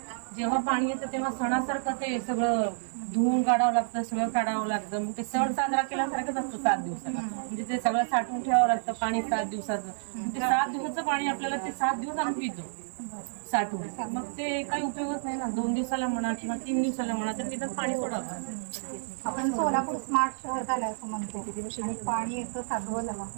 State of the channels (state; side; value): silent; left; 58 dB below the other